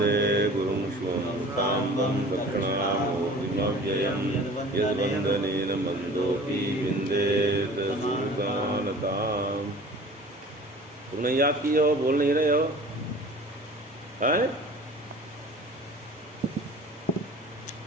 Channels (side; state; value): both; normal; correlation 0.44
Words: गुरुं स्वं साम्बं दक्षिणामूर्तिमव्ययं यद्वन्दनेन मन्दोऽपि विन्देत सुजानताम्। तुमने याद की हो, बोल नहीं रहे हो? हैं?